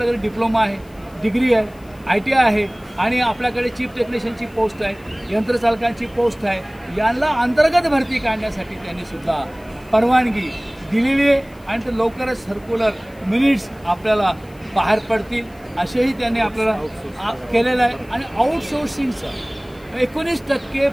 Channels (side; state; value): left; noise; hiss, 29 dB below the sound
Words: डिप्लोमा आहे, डिग्री आहे, ITI आहे आणि आपल्याकडे चीफ टेक्निशियनची पोस्ट आहे, यंत्रचालकांची पोस्ट आहे, यांना अंतर्गत भरती काढण्यासाठी त्यांनी सुद्धा परवानगी दिलेली आहे आणि ते लवकरच सर्क्युलर मिनिट्स आपल्याला बाहेर पडतील असेही त्यांनी आपल्याला केलेलं आहे. आणि आउटसोर्सिंगचं 19%